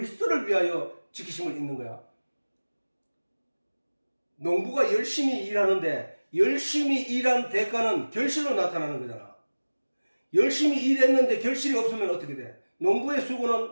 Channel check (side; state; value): both; inverted; correlation -1.00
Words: 위하여 지키심을 입는 거야? 농부가 열심히 일하는데 열심히 일한 대가는 결실로 나타나는 거잖아. 열심히 일했는데 결실이 없으면 어떻게 돼? 농부의